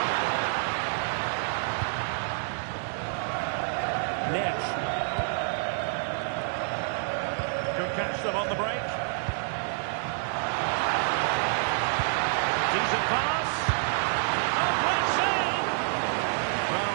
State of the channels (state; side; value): silent; left; 58 dB below the other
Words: Nesh. Could catch them on the break. Decent pass. Oh, great save! Well,